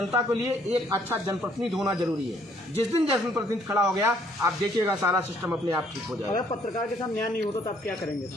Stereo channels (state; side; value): normal; both; correlation 0.64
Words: के लिए एक अच्छा जनप्रतिनिधि होना जरूरी है। जिस दिन जनप्रतिनिधि खड़ा हो गया आप देखिएगा सारा सिस्टम अपने आप ठीक हो जाएगा। अगर पत्रकार के साथ न्याय नहीं होता तो आप क्या करेंगे?